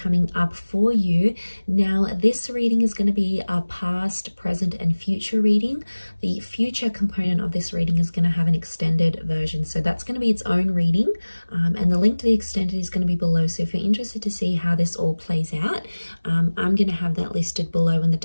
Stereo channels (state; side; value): inverted; both; correlation -1.00